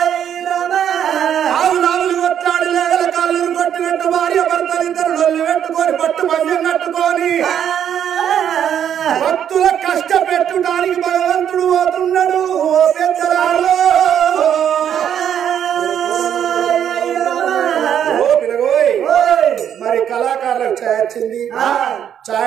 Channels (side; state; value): left; quieter; 9.3 dB